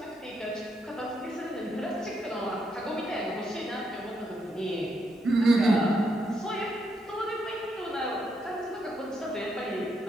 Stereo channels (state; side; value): normal; both; correlation 0.78